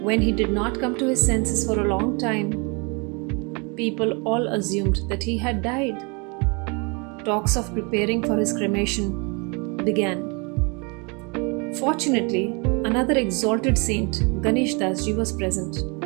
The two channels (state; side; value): quieter; left; 31.6 dB